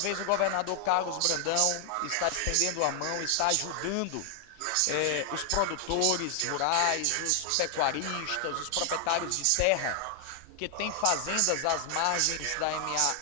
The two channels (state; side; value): different; both; correlation 0.00